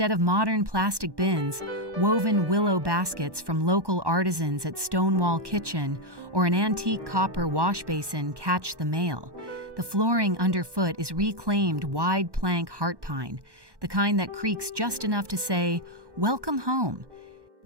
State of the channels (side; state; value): left; late; 1.1 ms